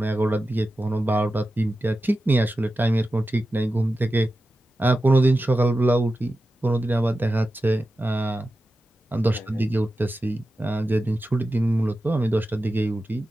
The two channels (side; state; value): both; normal; correlation 0.92